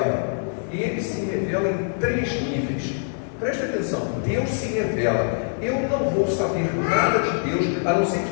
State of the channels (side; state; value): right; silent; digital silence